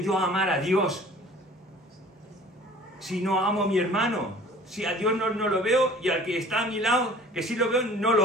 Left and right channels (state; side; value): normal; both; correlation 0.48